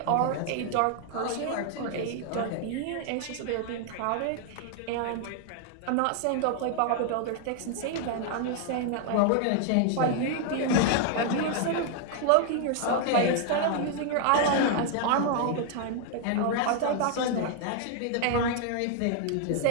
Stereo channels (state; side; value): different; both; correlation 0.00